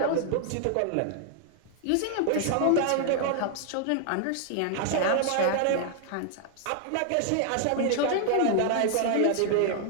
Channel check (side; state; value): both; different; correlation 0.00